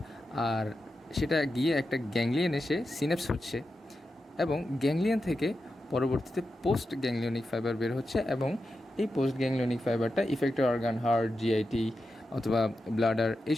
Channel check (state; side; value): normal; both; correlation 0.89